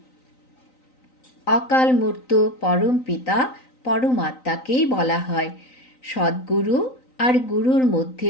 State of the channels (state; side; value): late; right; 3.9 ms